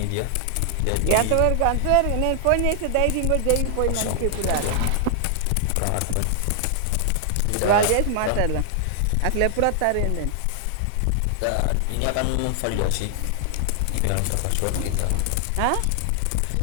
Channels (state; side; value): different; both; correlation 0.00